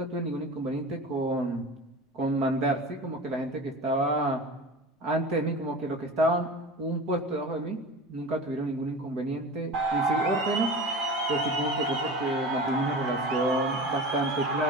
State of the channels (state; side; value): normal; both; correlation 0.33